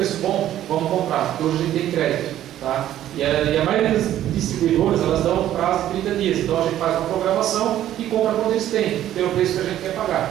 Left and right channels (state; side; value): quieter; left; 12.3 dB